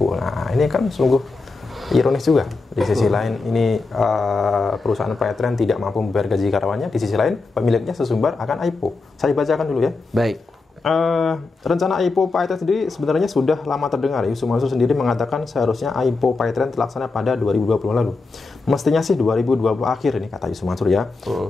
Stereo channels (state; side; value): quieter; right; 3.8 dB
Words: Nah, ini kan sungguh ironis juga. Di sisi lain ini perusahaan PayTrend tidak mampu membayar gaji karyawannya, di sisi lain pemiliknya sesumbar akan IPO. Saya bacakan dulu ya. Baik. Rencana IPO PayTrend sendiri sebenarnya sudah lama terdengar. Yusuf Mansur sendiri mengatakan seharusnya IPO PayTrend terlaksana pada 2020 lalu. Mestinya sih 2020 akhir ini, kata Yusuf Mansur ya.